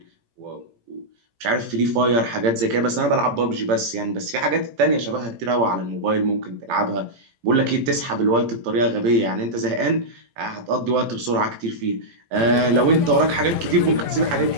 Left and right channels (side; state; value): left; late; 17 ms